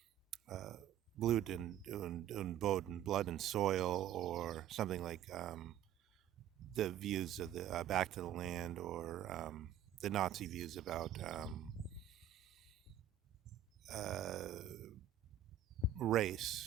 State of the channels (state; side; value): quieter; left; 9.7 dB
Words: Blut and Boden, blood and soil, or something like the views of the Back to the Land, or the Nazi views about race,